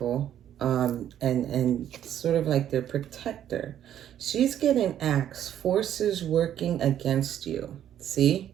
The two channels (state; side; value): quieter; left; 10.6 dB